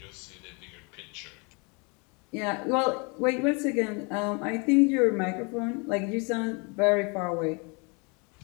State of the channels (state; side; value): quieter; right; 31.9 dB